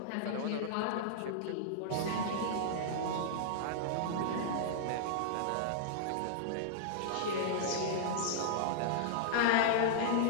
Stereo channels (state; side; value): different; both; correlation -0.02